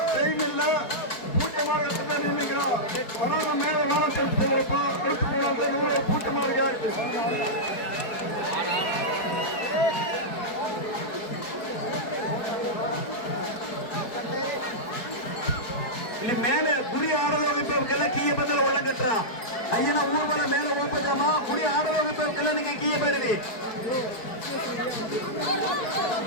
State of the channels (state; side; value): late; right; 4.7 ms